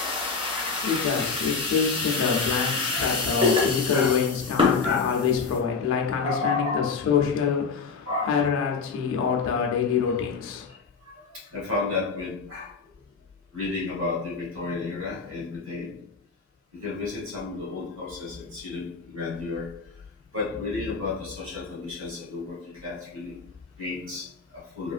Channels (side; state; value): right; quieter; 5.0 dB